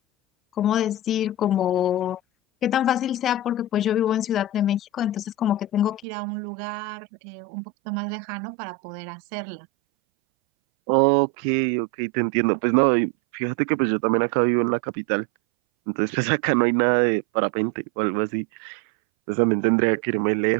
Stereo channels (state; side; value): drops out; left; at 6.1 s